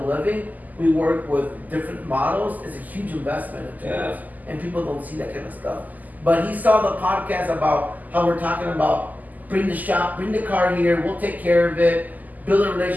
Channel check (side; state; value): left; late; 0.081 ms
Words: we work with different models. It's a huge investment in tools. And people don't see that kind of stuff. But he saw the podcast about how we're talking about bring the car here, we'll take care of it, build a